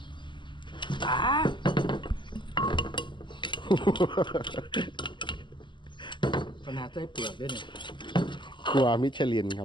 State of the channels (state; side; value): late; right; 0.23 ms